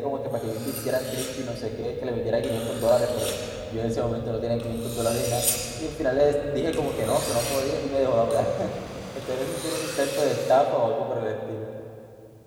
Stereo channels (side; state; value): both; identical; correlation 1.00